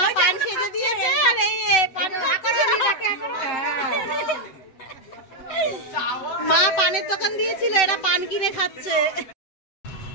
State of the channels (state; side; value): late; right; 7.9 ms